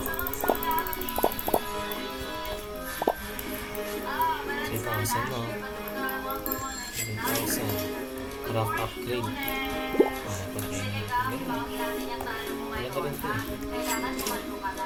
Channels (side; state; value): both; identical; correlation 1.00